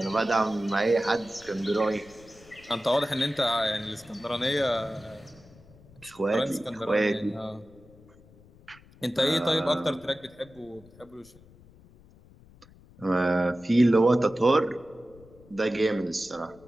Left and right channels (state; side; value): noise; left; rumble, 25 dB below the sound